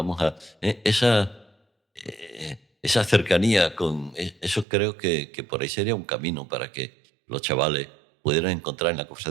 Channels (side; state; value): left; drops out; at 4.7 s